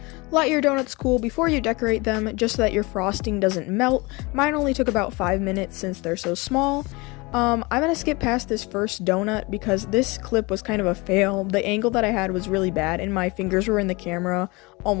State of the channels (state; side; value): quieter; right; 25.3 dB